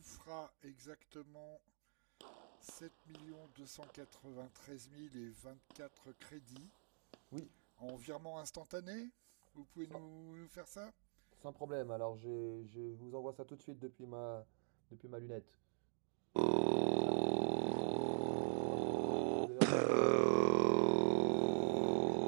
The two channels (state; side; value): silent; left; digital silence